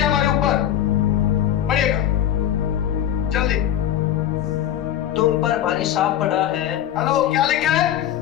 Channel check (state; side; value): quieter; right; 10.9 dB